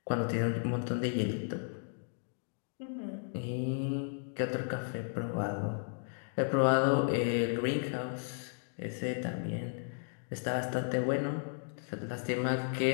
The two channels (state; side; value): silent; right; digital silence